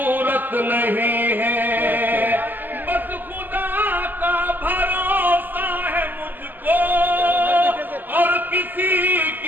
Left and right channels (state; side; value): late; left; 0.089 ms